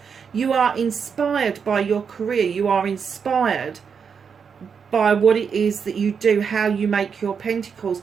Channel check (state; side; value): quieter; left; 6.4 dB